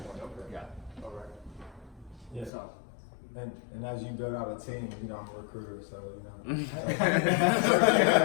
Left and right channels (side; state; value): right; drops out; at 2.5 s